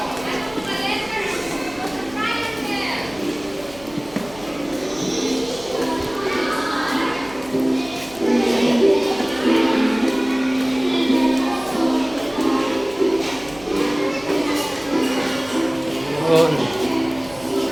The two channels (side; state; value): right; noise; hum, 21 dB below the sound